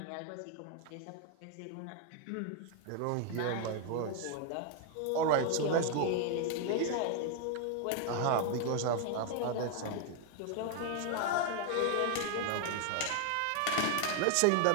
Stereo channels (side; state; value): both; different; correlation 0.00